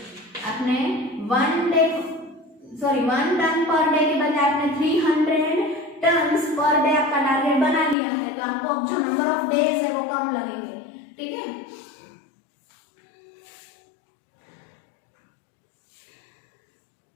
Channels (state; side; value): drops out; right; at 8.0 s